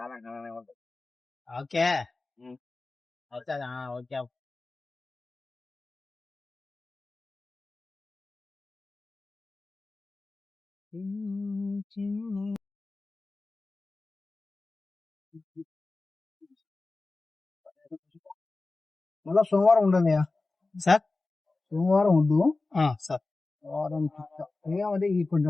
ओके. अच्छा हाँ ओके. మళ్ళా సోమవారం ఉండదు సార్. సోమవారం ఉండు సార్. వారం ఏమంటే ఈ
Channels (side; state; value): right; quieter; 3.4 dB